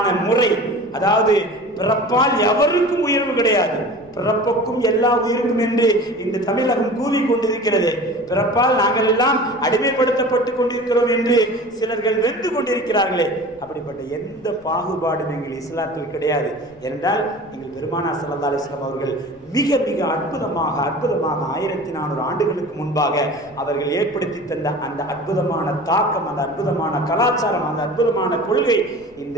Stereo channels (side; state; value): left; noise; rumble, 28 dB below the sound